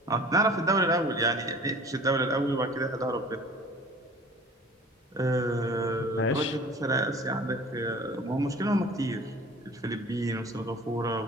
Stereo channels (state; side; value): normal; both; correlation 0.46